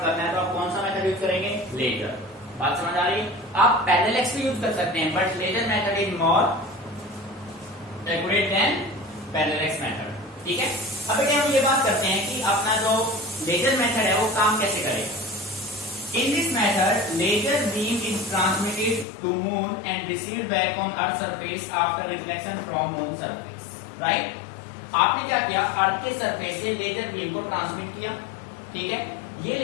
करना है तो आप कौन सा मेथड यूज करेंगे, लेजर। बात समझ आ रही है? आप पैरेलल एक्स भी यूज कर सकते हैं, but laser method is more accurate than parallax method, ठीक है। अब बेटे हम ये बात करते हैं कि अपना जो लेजर मेथड है वो काम कैसे करेगा। In this method laser beam is transmitted to moon and received back on earth surface after reflection from moon surface, right. आपने क्या किया, अर्थ के सरफेस से लेजर बीम को ट्रांसमिट किया, ठीक है। ये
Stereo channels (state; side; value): drops out; right; at 19.1 s